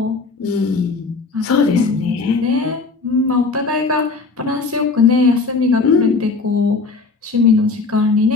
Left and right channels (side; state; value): right; quieter; 4.1 dB